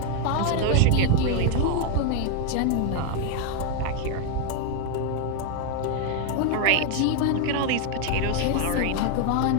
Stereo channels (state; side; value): different; both; correlation 0.01